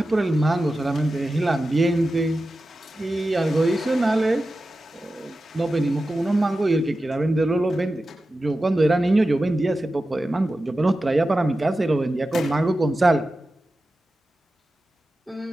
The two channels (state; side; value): normal; both; correlation 0.93